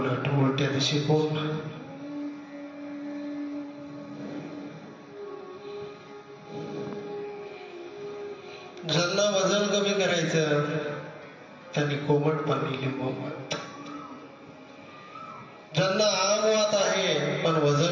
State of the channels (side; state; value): both; identical; correlation 1.00